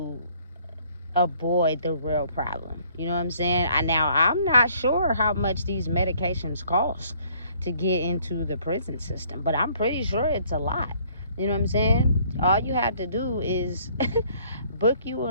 avoid the real problem. You know what I'm saying? Now, I'm not sure how much these medications cost to get into the prison system, but I'm pretty sure it's a lot. You know what I'm saying? All you have to do is book you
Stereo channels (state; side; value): inverted; both; correlation -0.61